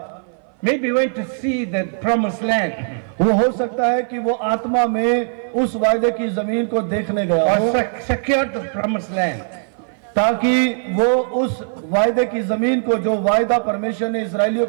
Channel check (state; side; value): silent; left; 57 dB below the other